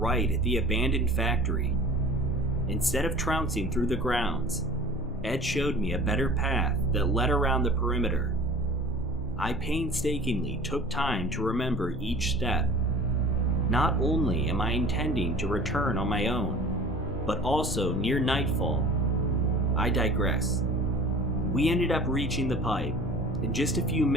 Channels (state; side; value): normal; both; correlation 0.44